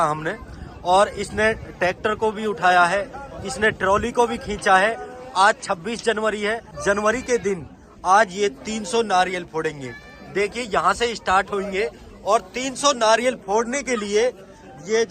हमने, और इसने ट्रैक्टर को भी उठाया है, इसने ट्रॉली को भी खींचा है। आज 26 जनवरी है, जनवरी के दिन आज ये 300 नारियल फोड़ेंगे। देखिए यहाँ से स्टार्ट होंगे और 300 नारियल फोड़ने के लिए ये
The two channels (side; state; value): both; identical; correlation 1.00